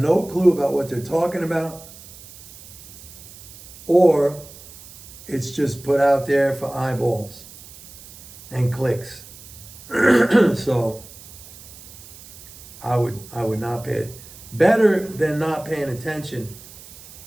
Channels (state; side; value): noise; right; hiss, 18 dB below the sound